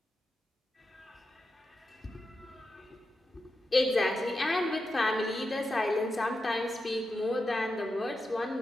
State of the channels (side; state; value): both; normal; correlation 0.89